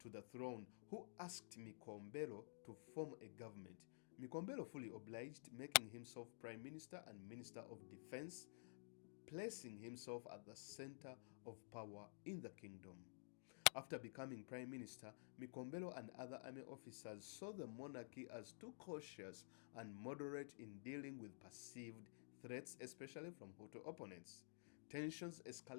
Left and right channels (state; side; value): silent; right; digital silence